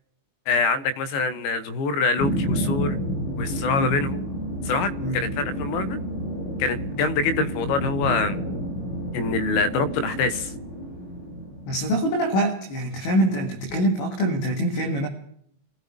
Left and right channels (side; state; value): right; late; 22 ms